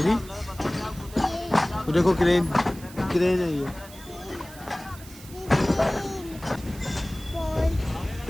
भी तो देखो क्रेन है ये।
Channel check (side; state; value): right; noise; hiss, 18 dB below the sound